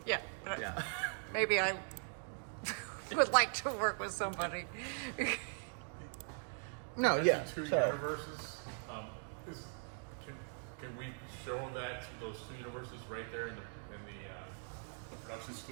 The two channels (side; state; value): left; silent; 51 dB below the other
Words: Yeah. Right. Yeah. Maybe I would like to work with somebody. no, yeah. Two So universes. Is, can we show that those two universes right there in the production